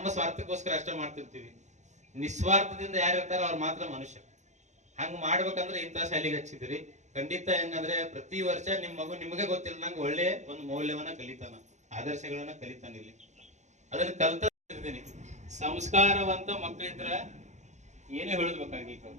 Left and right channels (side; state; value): left; late; 0.34 ms